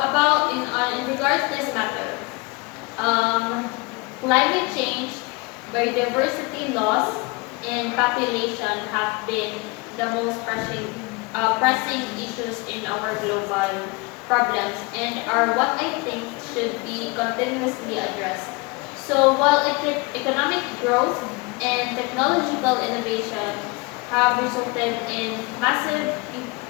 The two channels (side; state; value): right; quieter; 26.4 dB